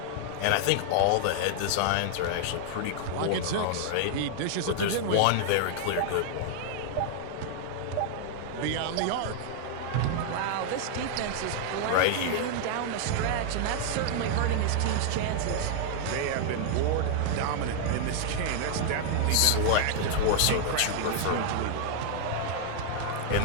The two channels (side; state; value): both; different; correlation 0.00